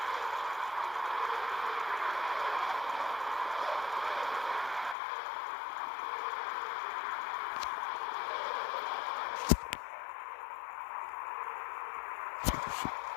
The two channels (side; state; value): right; drops out; at 5.0 s